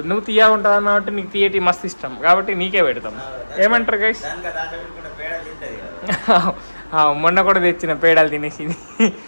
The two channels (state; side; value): inverted; both; correlation -1.00